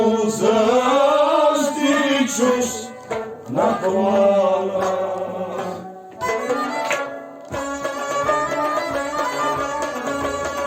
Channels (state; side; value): identical; both; correlation 1.00